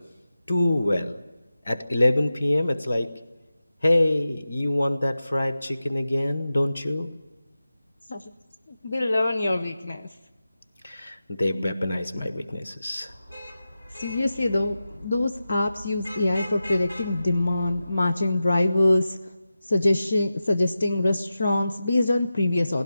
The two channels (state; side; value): inverted; both; correlation -0.93